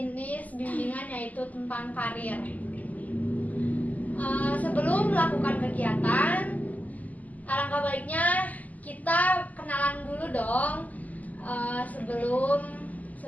bimbingan yaitu tentang karir. Sebelum melakukan kegiatan, alangkah baiknya kita kenalan dulu dong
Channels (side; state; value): right; late; 0.077 ms